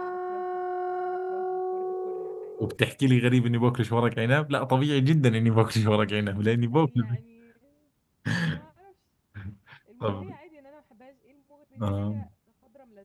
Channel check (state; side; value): identical; both; correlation 1.00